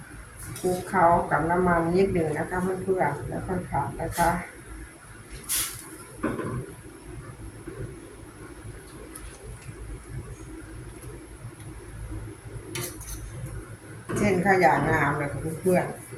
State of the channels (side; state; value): both; identical; correlation 1.00